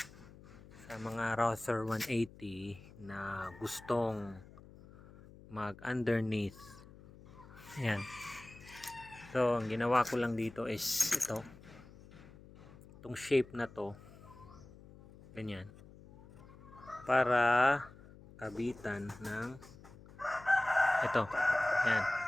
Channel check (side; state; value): left; noise; hum, 20 dB below the sound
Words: Sa mga Rouser 180 na gustong mag underneath. Ayan. So, ang ginawa ko lang dito is ito. Itong shape na to. Ganyan. Para kabitan ng ito. Ayan.